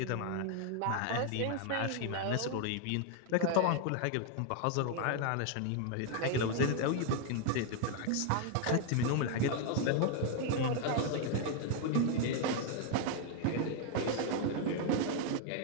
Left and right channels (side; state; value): both; different; correlation 0.00